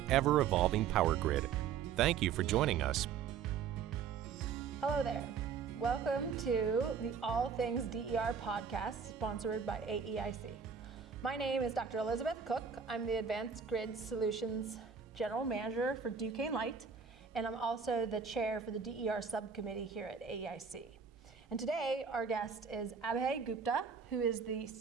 ever-evolving power grid. Thank you for joining us. Hello there. Welcome to the All Things DER podcast, sponsored by AEIC. My name is Dr. Elizabeth Cook. I'm the Advanced Grid Solutions General Manager for Duquesne Light, and I'm also the chair for the DER subcommittee here at AEIC. And today, our guest is Abhay Gupta, who is the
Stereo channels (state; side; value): quieter; left; 6.6 dB